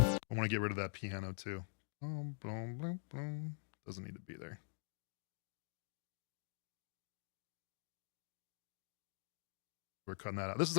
want to get rid of that piano too. Boom, boom, boom, boom. Doesn't need to be there. We're cutting that out. This is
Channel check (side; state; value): right; silent; digital silence